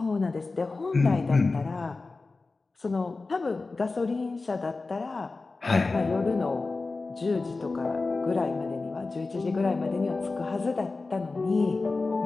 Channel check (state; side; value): quieter; right; 3.7 dB